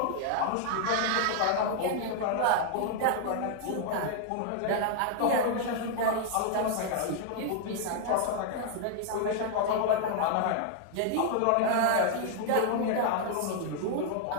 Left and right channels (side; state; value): both; different; correlation -0.01